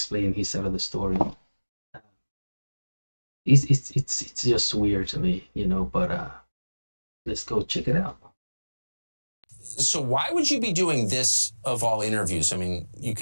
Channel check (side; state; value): both; inverted; correlation -1.00